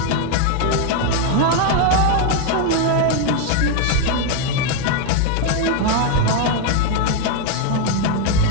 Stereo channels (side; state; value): both; different; correlation 0.01